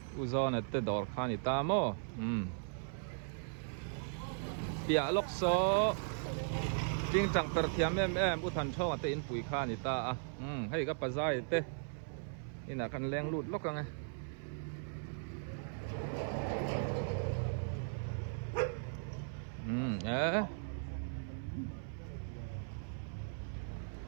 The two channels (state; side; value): silent; left; 53 dB below the other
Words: u zon te dor kha ni ta mo pia lok so jing chang per thiam em u than chong te in pui kha ni ta a hei ka pa zai te ina kan leng lut lok ka nga